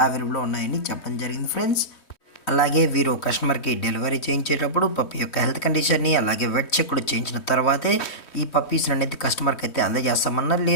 అవైలబుల్లో ఉన్నాయని చెప్పడం జరిగింది ఫ్రెండ్స్. అలాగే వీరు కస్టమర్కి డెలివరీ చేయించేటప్పుడు పప్పీ యొక్క హెల్త్ కండిషన్ని అలాగే వెట్ చెక్ కూడా చేయించిన తర్వాతే ఈ పప్పీస్ అనేది కస్టమర్కి అయితే అందజేస్తామన్నా.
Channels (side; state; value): right; late; 3.1 ms